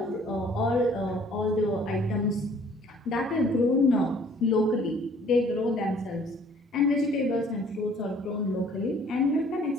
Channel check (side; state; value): both; normal; correlation 0.57